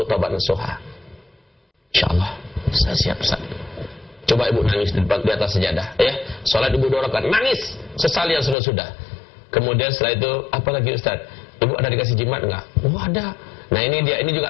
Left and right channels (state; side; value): drops out; right; at 8.6 s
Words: taubat nasuha. InsyaAllah, saya siap, Ustaz. Coba ibu nangis di atas sejadah, ya. Salat ibu 2 rakaat, nangis. Sesali yang sudah-sudah. Kemudian setelah itu, apa lagi, Ustaz? Ibu ada dikasih jimat enggak? Oh, ada. Nah, ini dia, ini juga